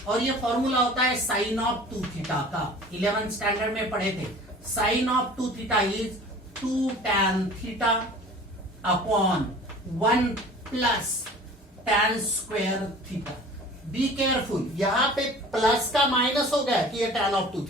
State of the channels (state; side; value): normal; both; correlation 0.44